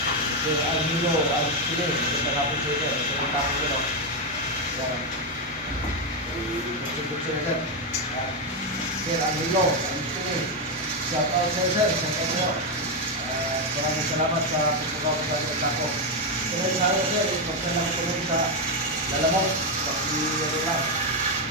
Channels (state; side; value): normal; both; correlation 0.05